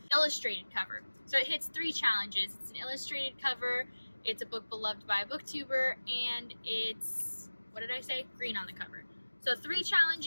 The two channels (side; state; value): both; inverted; correlation -1.00